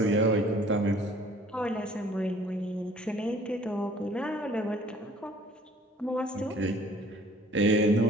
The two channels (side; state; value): both; normal; correlation 0.53